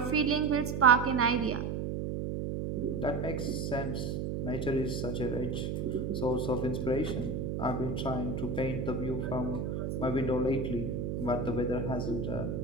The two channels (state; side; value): noise; right; hum, 2 dB below the sound